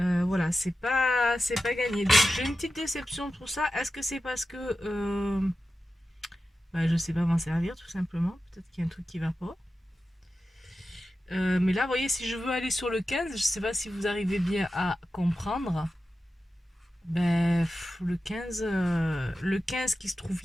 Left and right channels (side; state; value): both; normal; correlation 0.92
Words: c'est pas gagné. Donc j'ai une petite déception pour ça. Est-ce que c'est parce que je sais pas m'en servir tout simplement? Peut-être qu'il y a un truc qui va pas. Mais là, vous voyez, si je veux aller sur le 15, je sais pas si vous arrivez bien à comprendre. Ben, le 15 qui se trouve